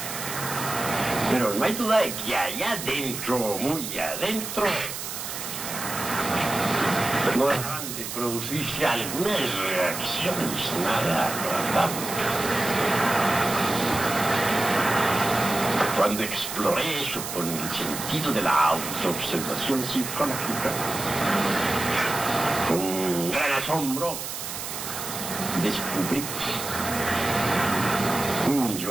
Pero no hay duda de que allá adentro, muy adentro, no dejaban de producirse algunas reacciones nada agradables. Cuando exploré eso con el sentido de la autoobservación psicológica, con gran asombro, descubrí un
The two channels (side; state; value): right; noise; hiss, 6 dB below the sound